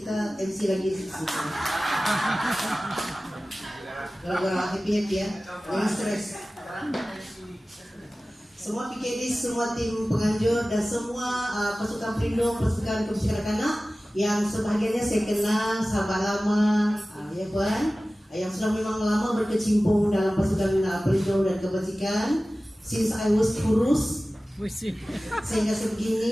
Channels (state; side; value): normal; both; correlation 0.97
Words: MC lagi sedikit. Gara-gara happy ya, jangan stres. Semua PKD, semua tim penganjur dan semua pasukan pelindung, pasukan kebajikan kanak yang sebahagiannya saya kenal sahabat lama, ya Puan, yang sudah memang lama berkecimpung dalam pasukan pelindung dan kebajikan. Since I was kurus, sehingga